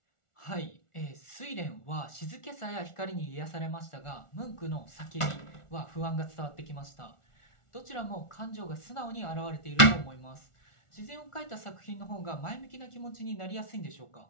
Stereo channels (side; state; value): right; late; 1.4 ms